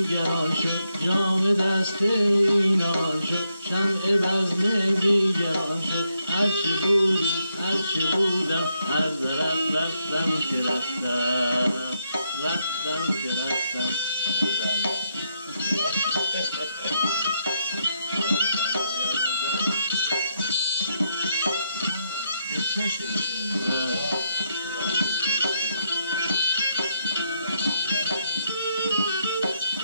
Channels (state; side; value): inverted; both; correlation -0.78